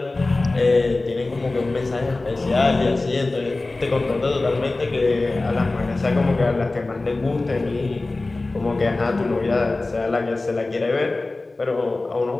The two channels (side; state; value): right; quieter; 3.2 dB